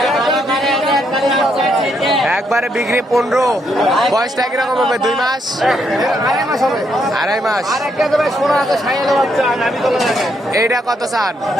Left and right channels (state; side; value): normal; both; correlation 0.76